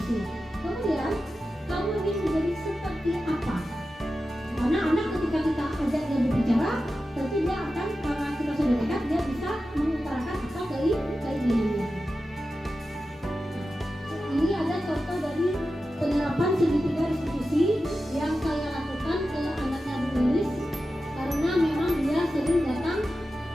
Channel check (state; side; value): normal; both; correlation 0.92